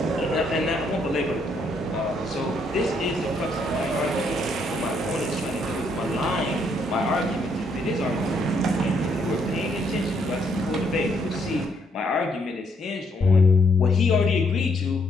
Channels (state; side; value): normal; both; correlation 0.72